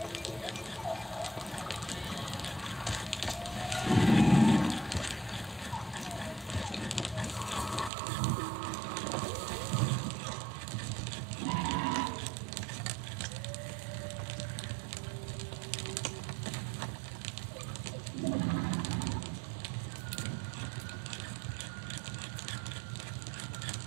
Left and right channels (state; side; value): drops out; left; at 7.9 s